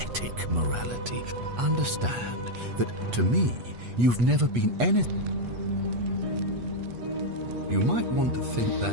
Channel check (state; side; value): late; left; 8.3 ms